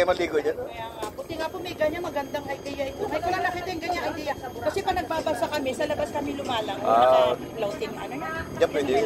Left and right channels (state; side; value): identical; both; correlation 1.00